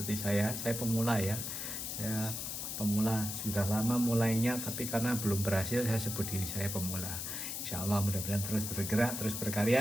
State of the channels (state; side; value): noise; left; hiss, 4 dB below the sound